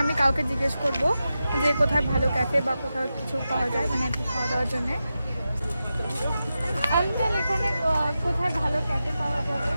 আমি কাউকে জিজ্ঞেস করব যে কোথায় ভালো ক্যাফে বা কোথাও কিছু পাওয়া যায়, মানে খাওয়া দাওয়ার জন্যে। আঙ্কেল, এখানে কোথায় ভালো ক্যাফে পাওয়া যাবে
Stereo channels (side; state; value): both; inverted; correlation -0.91